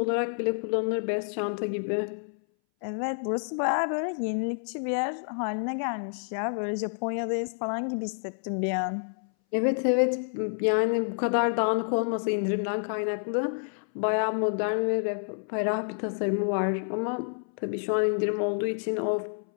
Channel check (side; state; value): right; silent; 59 dB below the other